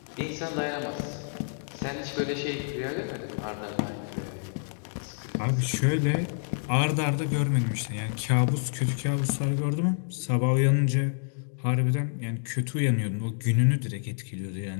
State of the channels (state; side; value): silent; right; digital silence